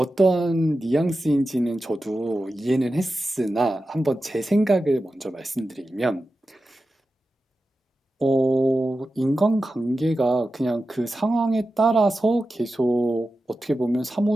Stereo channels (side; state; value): both; normal; correlation 0.92